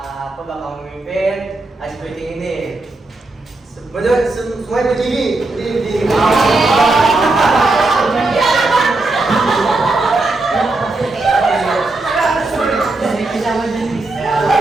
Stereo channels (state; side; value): quieter; left; 3.1 dB